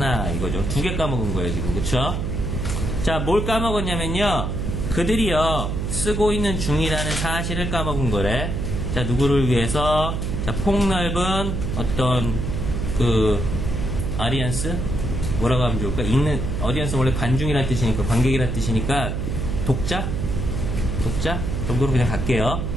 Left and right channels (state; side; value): noise; right; hum, 2 dB below the sound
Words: 이거죠. 두 개 까먹은 거예요, 지금. 그쵸? 자, 뭘 까먹었냐면요, 그들이요, 쓰고 있는 중이라는 사실을 까먹은 거래. 자, 누구를 위해서? 자, 폭넓은 어떤 아리안스? 뭐라고 하면 좋을까? 어디언스 원래 관중이란 뜻이니까, 관객이란 뜻이니까, 독자 정도로 그냥 갈게요.